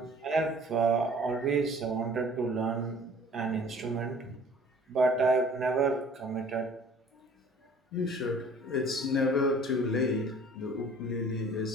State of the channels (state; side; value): normal; both; correlation 0.50